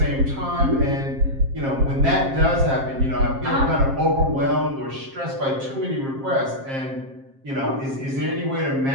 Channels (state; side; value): late; left; 7.5 ms